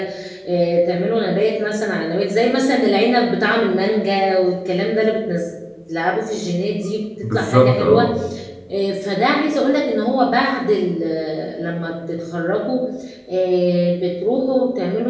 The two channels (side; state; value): both; identical; correlation 1.00